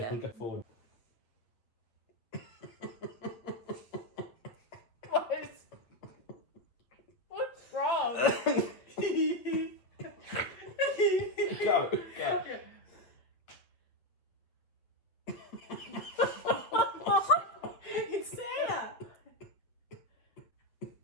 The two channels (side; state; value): right; late; 8.2 ms